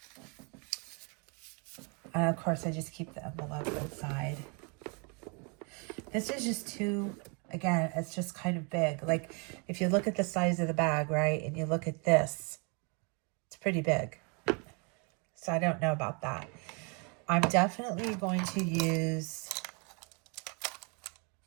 And of course, I just keep the envelope inside. This is just too, again, it's just kind of big. Like, if you look at the size of the bag, right, and you look at this, it's pretty big. So I don't know about that. I'm definitely going to use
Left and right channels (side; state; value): left; quieter; 34.1 dB